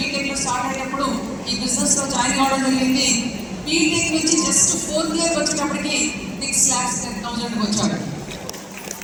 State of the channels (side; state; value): both; identical; correlation 1.00